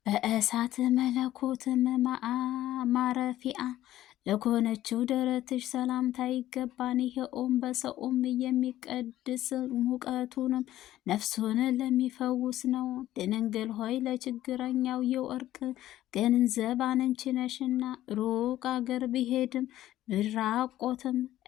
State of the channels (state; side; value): quieter; right; 13.8 dB